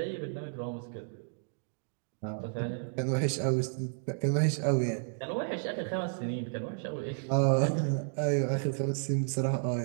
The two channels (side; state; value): left; silent; digital silence